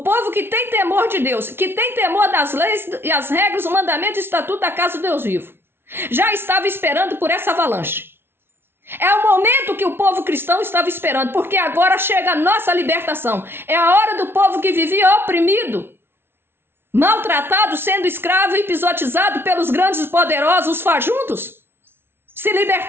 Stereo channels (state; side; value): late; left; 0.11 ms